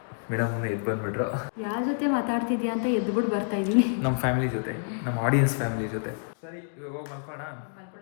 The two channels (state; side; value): silent; right; digital silence